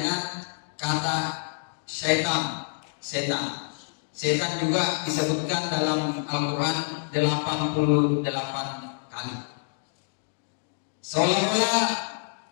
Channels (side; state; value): right; silent; digital silence